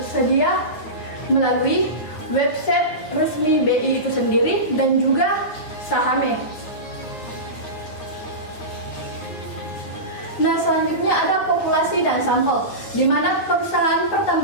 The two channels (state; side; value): late; right; 9.3 ms